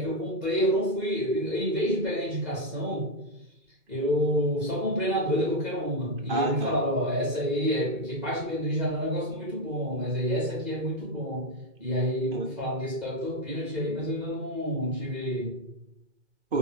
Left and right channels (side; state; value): left; late; 2.0 ms